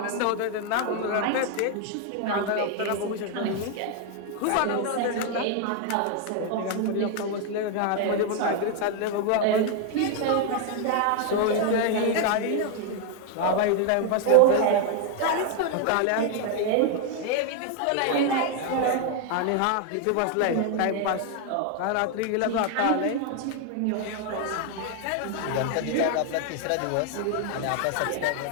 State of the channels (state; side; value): different; both; correlation 0.00